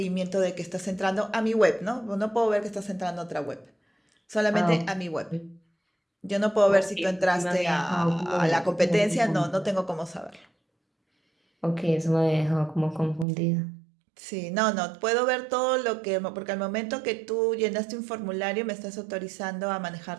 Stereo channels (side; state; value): left; drops out; at 13.2 s